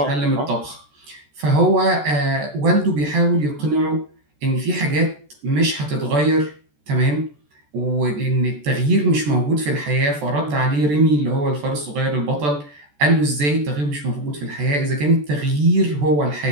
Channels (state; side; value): late; left; 14 ms